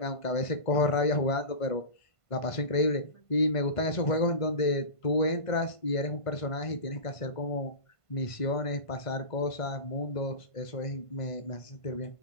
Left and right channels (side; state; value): right; late; 1.5 ms